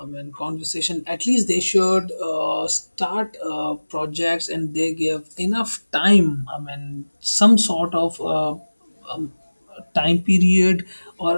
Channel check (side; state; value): both; inverted; correlation -1.00